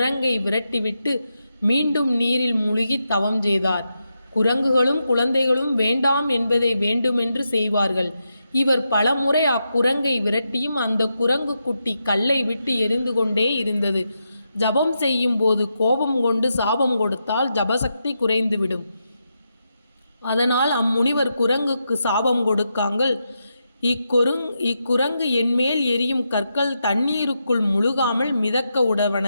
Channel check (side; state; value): both; inverted; correlation -0.86